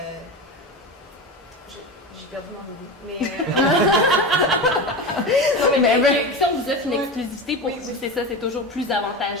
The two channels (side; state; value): both; normal; correlation 0.24